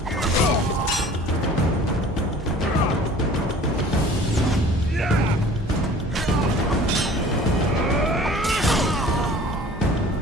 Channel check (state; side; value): normal; both; correlation 0.47